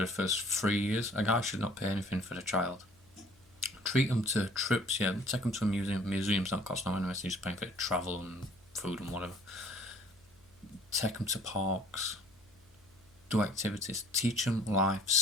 first 3 years, a guy should not pay anything for the child. Treat them to trips, yeah. Take them to a museum. Museums don't cost no anyway, so you're just paying for travel and food and whatever. Take them to parks. Do activities. Teach them life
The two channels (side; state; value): left; noise; hum, 30 dB below the sound